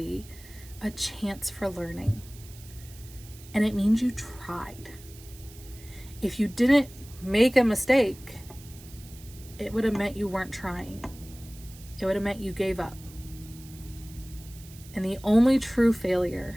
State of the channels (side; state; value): right; noise; hiss, 20 dB below the sound